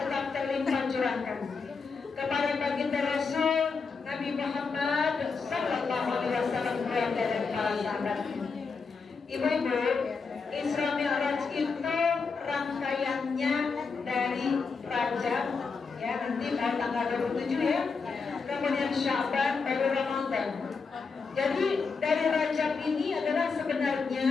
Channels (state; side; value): quieter; right; 4.9 dB